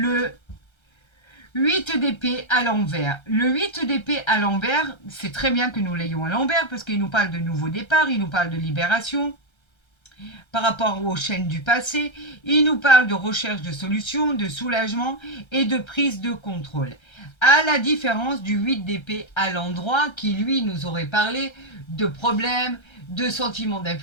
8 d'épée à l'envers. Le 8 d'épée à l'envers, c'est très bien que nous l'ayons à l'envers parce qu'il nous parle de nouveau départ, il nous parle de libération par rapport aux chaînes du passé, il nous parle de recherche de solutions, de soulagement et de prise de contrôle. À la différence du 8 d'épée à l'endroit qui lui nous aurait parlé de problèmes, de sentiments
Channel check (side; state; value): right; late; 1.3 ms